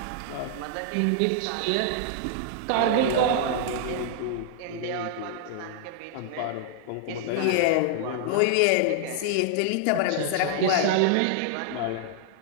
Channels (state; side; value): different; both; correlation -0.01